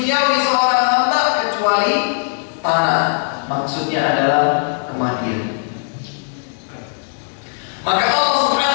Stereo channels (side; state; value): right; silent; 67 dB below the other